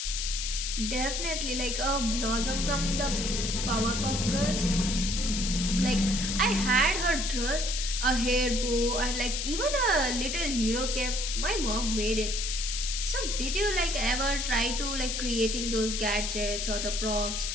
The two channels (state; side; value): noise; left; hiss, 2 dB below the sound